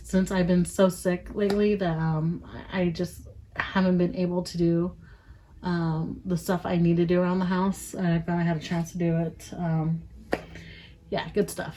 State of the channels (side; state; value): both; identical; correlation 1.00